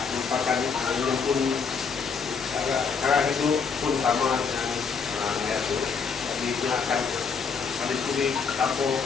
merupakan yang pun cara hidup pun sama dengan itu. Jadi dia akan ambil kulit campur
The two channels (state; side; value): quieter; right; 5.7 dB